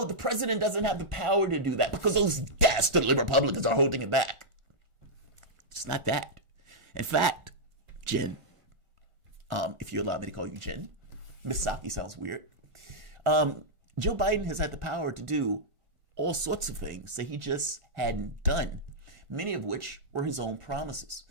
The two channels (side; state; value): left; late; 1.4 ms